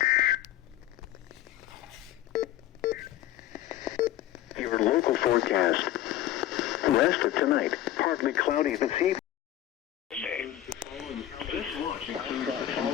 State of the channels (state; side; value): quieter; right; 13.2 dB